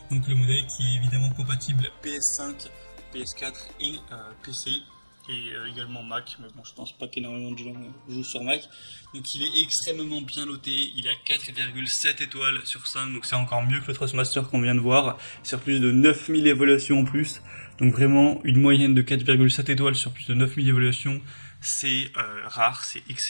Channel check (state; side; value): inverted; both; correlation -1.00